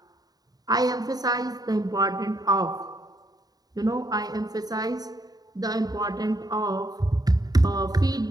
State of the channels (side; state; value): left; late; 0.18 ms